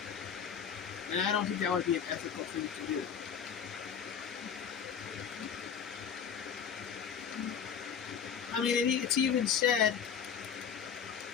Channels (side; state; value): right; quieter; 7.5 dB